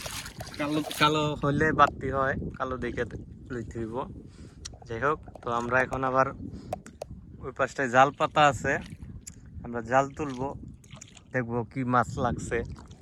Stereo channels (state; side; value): identical; both; correlation 1.00